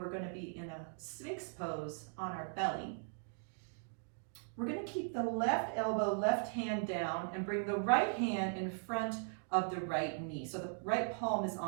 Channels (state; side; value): silent; left; digital silence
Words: going to be in a Sphinx pose on our belly. We're going to keep the left elbow, left hand down, and bring the right hand in front of the right knee. So the right palm is